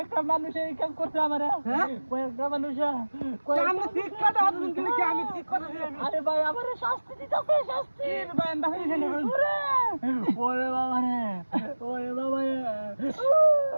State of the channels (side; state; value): both; inverted; correlation -1.00